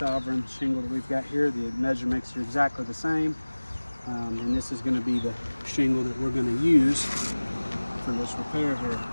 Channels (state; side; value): inverted; both; correlation -1.00